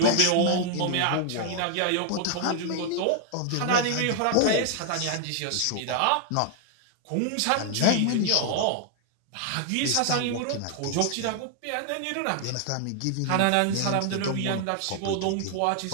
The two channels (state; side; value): different; both; correlation 0.00